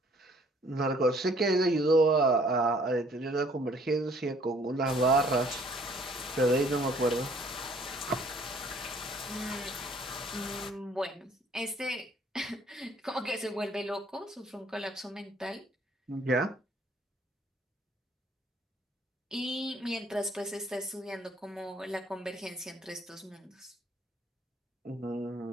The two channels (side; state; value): both; normal; correlation 0.60